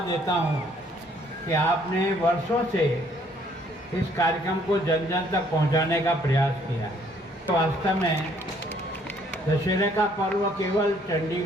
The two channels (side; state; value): both; normal; correlation 0.64